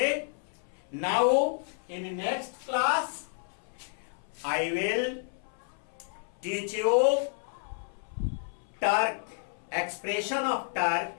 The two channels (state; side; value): silent; right; 57 dB below the other